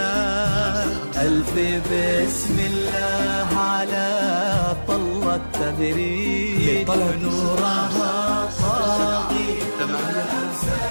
ألف بسم الله على طلة تبريد نورها طاغي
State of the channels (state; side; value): inverted; both; correlation -1.00